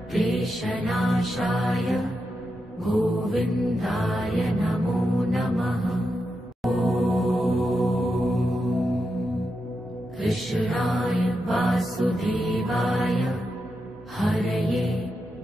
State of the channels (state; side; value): normal; both; correlation 0.87